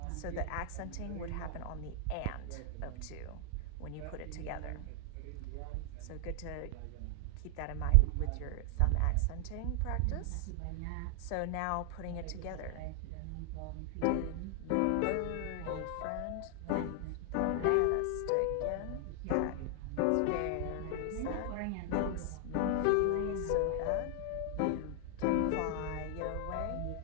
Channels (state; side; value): different; both; correlation 0.00